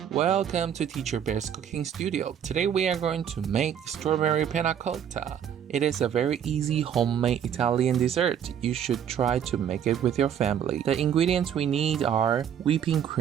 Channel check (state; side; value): quieter; left; 8.9 dB